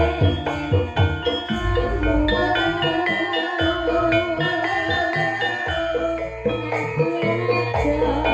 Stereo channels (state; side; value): identical; both; correlation 1.00